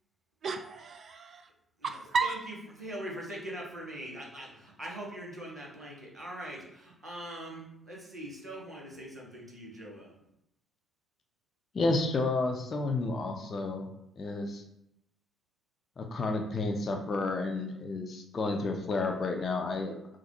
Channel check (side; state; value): both; normal; correlation 0.72